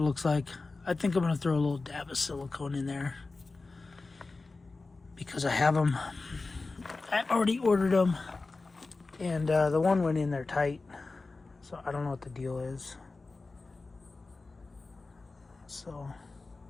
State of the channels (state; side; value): quieter; right; 3.7 dB